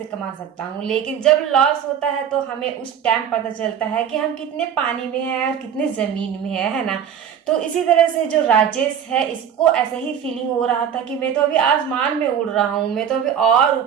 कमा सकता हूँ। लेकिन जब लॉस होता है तो हमें उस टाइम पता चलता है कि हम कितने पानी में हैं और कितने जमीन में है ना। तो इसी तरह से जो राजेश है, इसको ऐसा ही फीलिंग हो रहा था कि मैं तो अभी आसमान में उड़ रहा हूँ, मैं तो अभी और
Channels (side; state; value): left; quieter; 8.5 dB